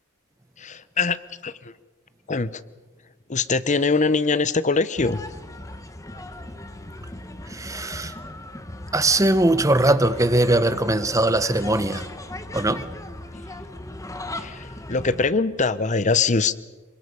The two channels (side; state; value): both; normal; correlation 0.49